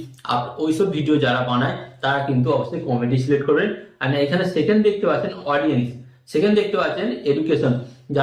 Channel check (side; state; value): both; identical; correlation 1.00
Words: ওইসব ভিডিও যারা বানায় তারা কিন্তু অবশ্যই কমেডি সিলেক্ট করবেন। আর এখানে সেকেন্ড দেখতে পাচ্ছেন অডিয়েন্স, সেকেন্ড দেখতে পাচ্ছেন এডুকেশন,